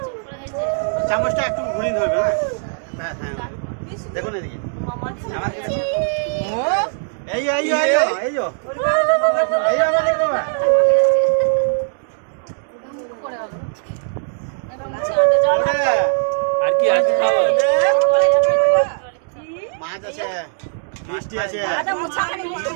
চামচটা একটু ঘুরিয়ে ধরবে হ্যাঁ। দেখুন এদিকে। ও এই মানে বাবা। আর কি আছে? মাছ আছে, মিষ্টি আছে।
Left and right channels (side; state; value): left; silent; digital silence